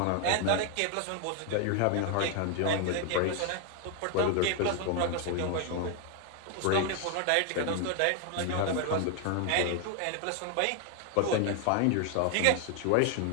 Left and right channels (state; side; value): different; both; correlation 0.01